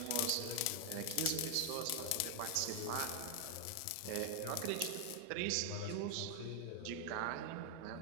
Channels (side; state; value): both; different; correlation 0.00